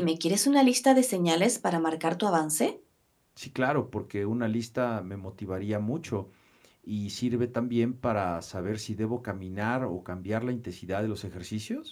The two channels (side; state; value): both; identical; correlation 1.00